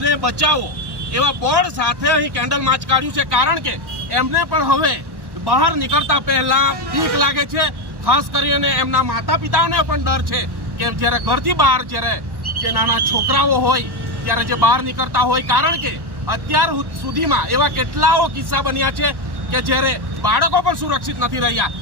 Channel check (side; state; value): left; late; 1.1 ms